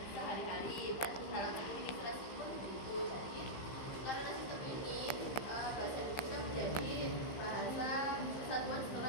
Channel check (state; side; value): late; right; 15 ms